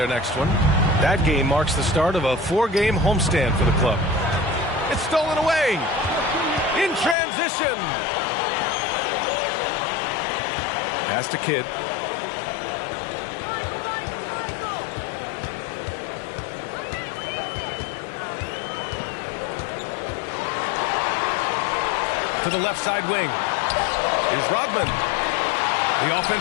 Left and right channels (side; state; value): right; drops out; at 7.2 s